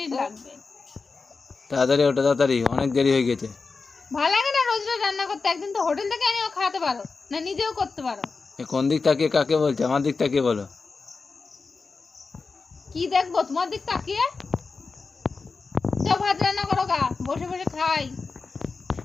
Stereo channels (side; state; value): right; quieter; 4.4 dB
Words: লাগবে। তাড়াতাড়ি ওঠো, তাড়াতাড়ি, অনেক দেরি হয়ে গেছে। ভালো লাগে না রোজ রোজ রান্না করতে? একদিন তো হোটেল থেকে এনেও খাওয়াতে পারো, না নিজেও করতে পারো। কোন দিক তাকিয়ে কাকে বলছে? আমার দিক তাকিয়ে বলো। কি দেখবো তোমার দিক তাকিয়ে? যাও ভাত রান্না করো গা, বসে বসে খাই।